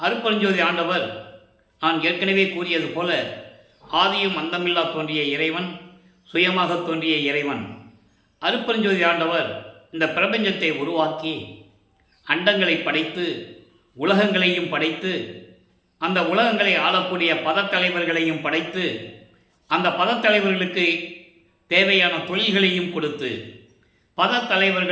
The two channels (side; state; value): both; identical; correlation 1.00